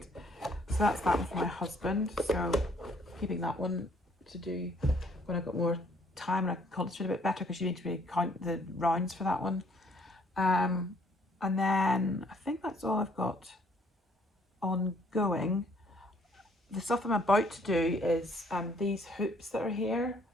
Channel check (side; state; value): both; normal; correlation 0.63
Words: So that's that one for my husband. So keeping that one to do when I've got more time and I can concentrate a bit better, because you need to really count the rounds for that one. And then I think that's all I've got ongoing. The stuff I'm about to do is these hoops that are here.